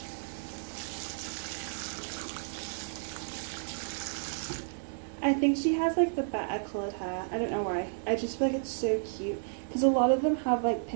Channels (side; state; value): left; silent; 56 dB below the other